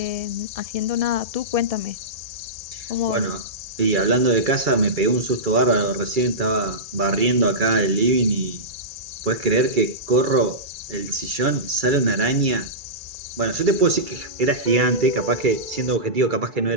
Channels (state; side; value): late; left; 2.3 ms